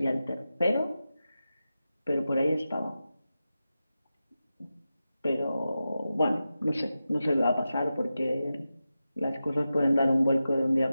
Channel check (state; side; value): inverted; both; correlation -0.92